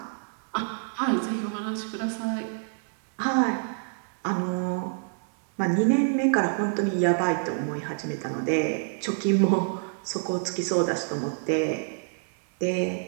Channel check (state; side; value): silent; left; digital silence